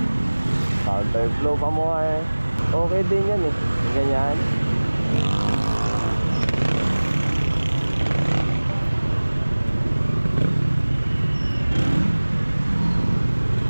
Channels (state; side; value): inverted; both; correlation -1.00